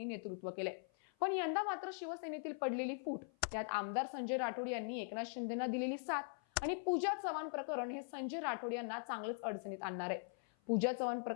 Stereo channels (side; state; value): right; silent; 50 dB below the other